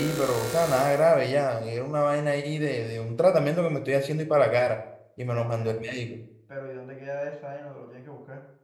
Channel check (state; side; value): identical; both; correlation 1.00